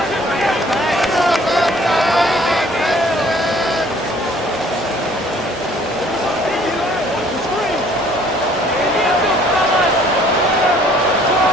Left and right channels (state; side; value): normal; both; correlation 0.57